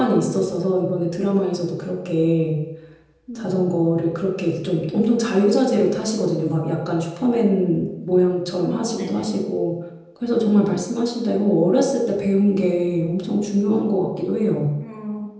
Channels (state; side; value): identical; both; correlation 1.00